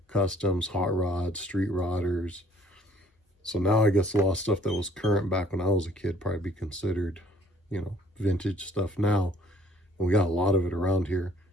customs, hot rods, street rodders. So now I guess a lot of stuff that was current back when I was a kid probably be considered, vintage stuff now. And we got a lot of it around here.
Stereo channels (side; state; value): both; normal; correlation 0.59